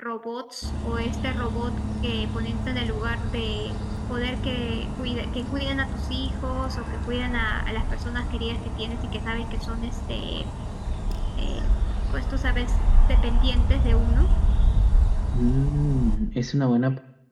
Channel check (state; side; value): identical; both; correlation 1.00